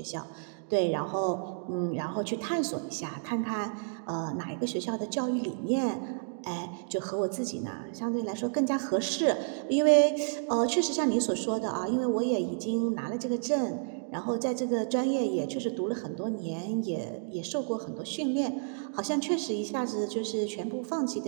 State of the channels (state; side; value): silent; left; digital silence